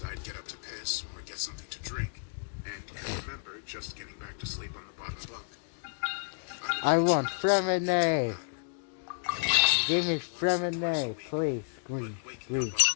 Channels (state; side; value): silent; right; digital silence